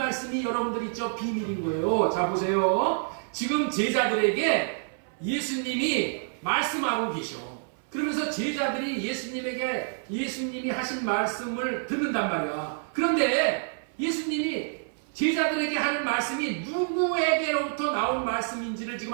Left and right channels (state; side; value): silent; left; 56 dB below the other